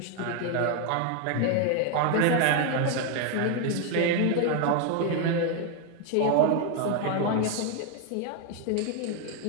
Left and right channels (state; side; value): different; both; correlation 0.01